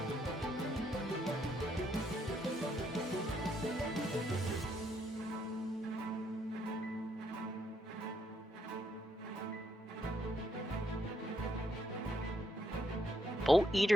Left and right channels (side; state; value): both; normal; correlation 0.74